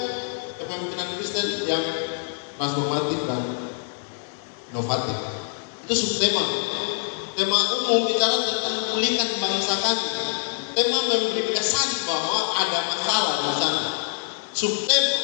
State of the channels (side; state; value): right; silent; digital silence